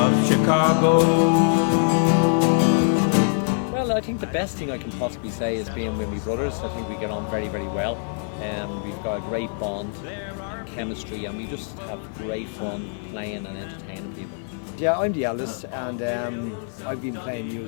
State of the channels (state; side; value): silent; right; 63 dB below the other